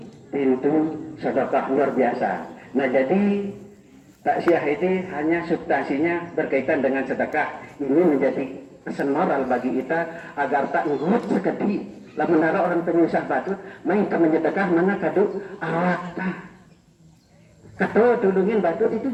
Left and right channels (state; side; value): identical; both; correlation 1.00